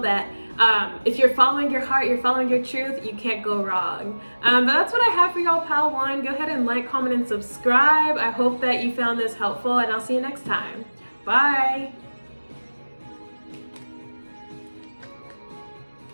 that if you're following your heart, you're following your truth, you can't go wrong. But that's what I have for y'all, Pile 1. Go ahead and like, comment, and subscribe. I hope that you found this helpful, and I'll see you next time. Bye.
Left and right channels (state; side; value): inverted; both; correlation -1.00